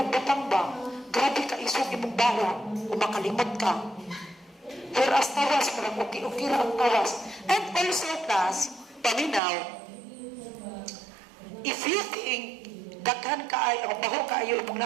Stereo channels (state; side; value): drops out; left; at 9.4 s